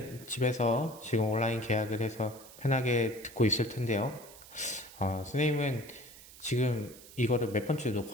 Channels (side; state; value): right; noise; hiss, 19 dB below the sound